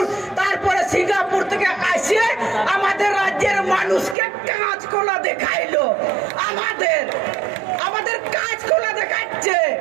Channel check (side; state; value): left; drops out; at 4.2 s